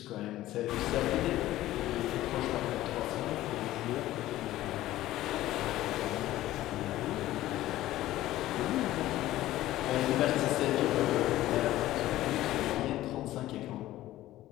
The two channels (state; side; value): quieter; right; 15.2 dB